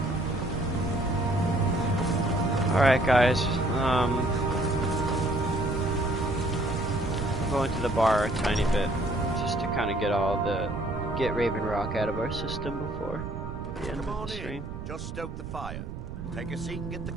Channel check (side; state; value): right; noise; rumble, 9 dB below the sound